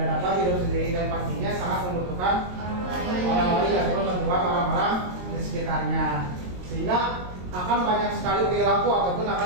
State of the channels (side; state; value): left; late; 22 ms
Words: dapat hidup sendiri dan pastinya sangat membutuhkan orang lain ataupun bantuan orang-orang di sekitarnya, sehingga akan banyak sekali perilaku ataupun